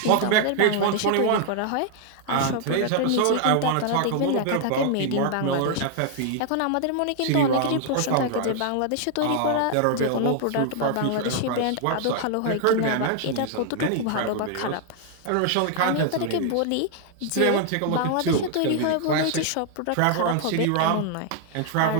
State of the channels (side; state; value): both; different; correlation 0.00